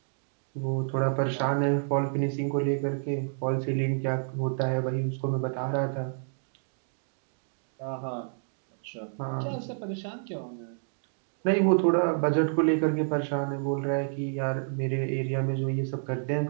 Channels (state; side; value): silent; left; digital silence